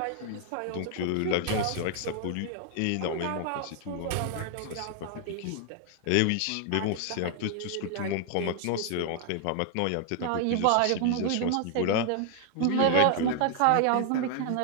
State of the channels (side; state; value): both; different; correlation 0.00